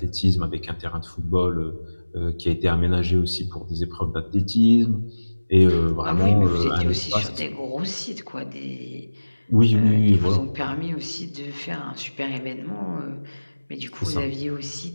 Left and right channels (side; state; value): both; inverted; correlation -1.00